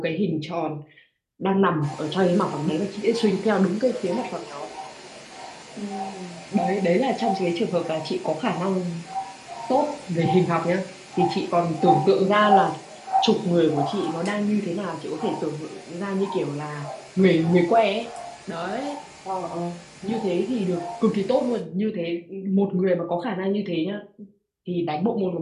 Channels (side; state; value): both; identical; correlation 1.00